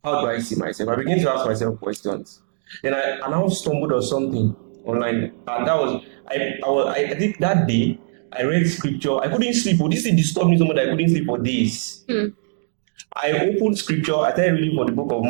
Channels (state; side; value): silent; left; digital silence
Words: How do I see myself? I began to ask myself questions. Then I now stumbled on something online, and that was I think that day I read scripture. I couldn't sleep. This thing disturbed me so much that I couldn't sleep for days. And I opened scripture, I started reading from the book of